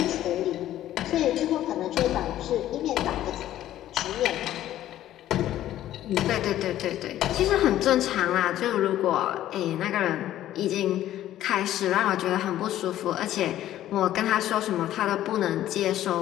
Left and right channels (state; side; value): quieter; right; 13.0 dB